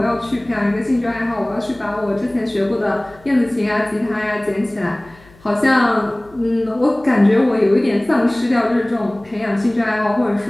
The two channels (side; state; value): left; noise; hum, 26 dB below the sound